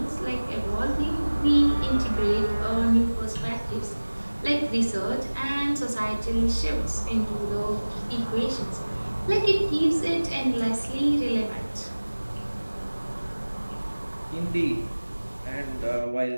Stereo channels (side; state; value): both; inverted; correlation -1.00